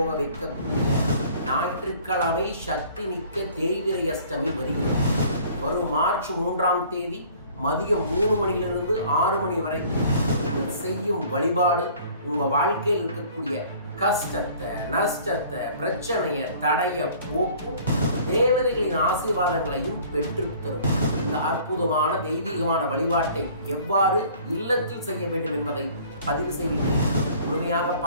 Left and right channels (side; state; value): both; inverted; correlation -0.52